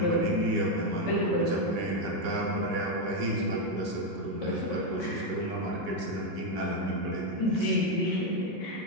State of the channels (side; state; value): right; late; 4.1 ms